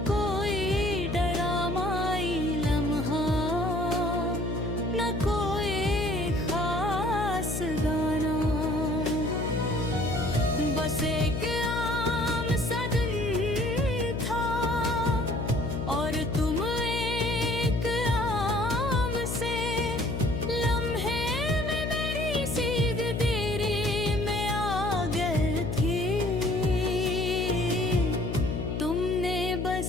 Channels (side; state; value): left; noise; hum, 3 dB below the sound